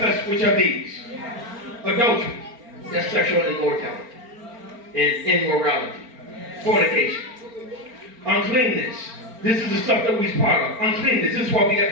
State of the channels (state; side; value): late; left; 4.4 ms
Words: which are these. Adultery, that's sexual immortality, and immorality, fornication, uncleanness. This is the stuff that we're part of. Uncleanness, this is what we